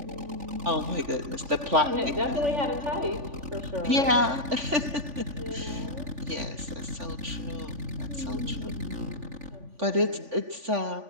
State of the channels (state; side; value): late; left; 3.5 ms